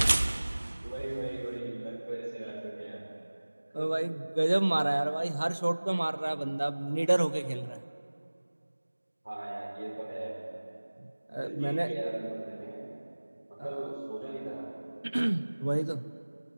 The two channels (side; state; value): both; inverted; correlation -1.00